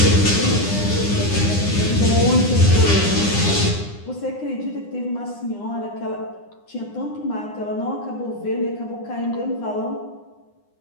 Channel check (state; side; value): late; right; 9.8 ms